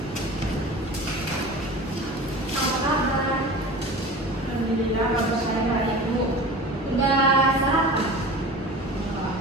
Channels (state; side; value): normal; both; correlation 0.36